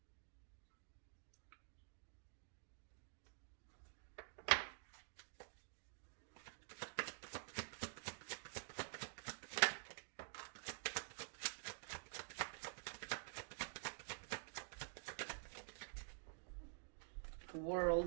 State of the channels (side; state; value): left; silent; digital silence